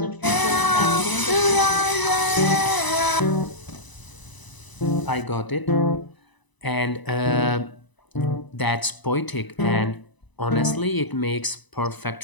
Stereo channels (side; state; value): right; late; 1.0 ms